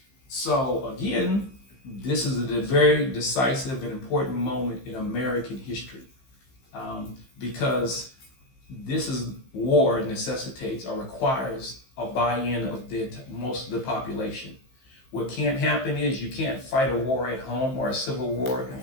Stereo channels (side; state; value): right; late; 15 ms